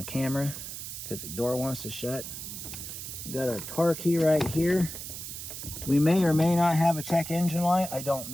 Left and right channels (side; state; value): right; noise; hiss, 8 dB below the sound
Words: camera because the door wants to shut. We got our car key right here. We may or may not have a check engine light, I don't